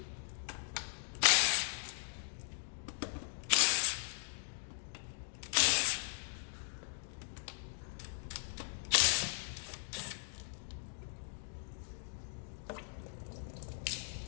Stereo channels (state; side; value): silent; right; digital silence